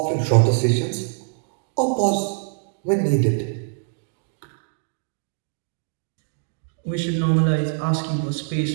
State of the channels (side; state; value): left; silent; digital silence